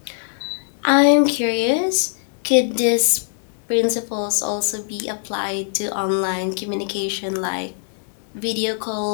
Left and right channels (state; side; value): silent; right; digital silence